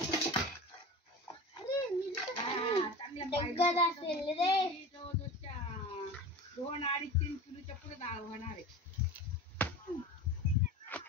चांगल्या असेल रे. जवळजवळच्या 2-2.5-3 किलोच्या पुढे डाळ होणार आहे.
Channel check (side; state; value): both; normal; correlation 0.33